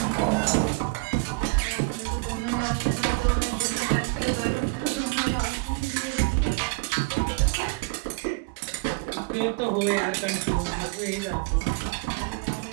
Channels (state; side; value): quieter; left; 28.4 dB